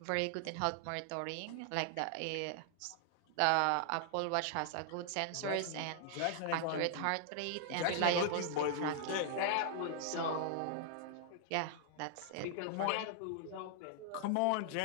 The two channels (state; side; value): different; both; correlation -0.01